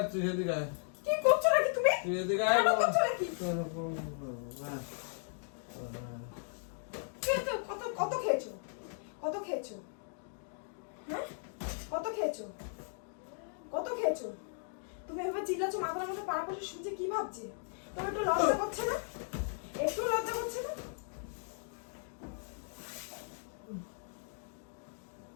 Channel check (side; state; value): right; silent; digital silence